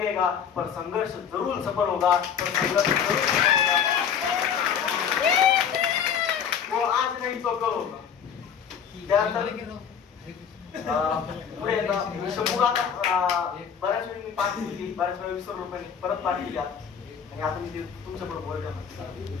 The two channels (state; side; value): quieter; right; 7.6 dB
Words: पर संघर्ष जरूर सफल होगा, पर संघर्ष जरूर सफल होगा। वो आज नहीं तो कल होगा। पुढे शंभूला बऱ्याच वेळी मी पाठी दिली, बऱ्याच वेळी विसरलो पण परत पाठी दिली आणि आता मी ते तुमच्या पुढे बोलतो.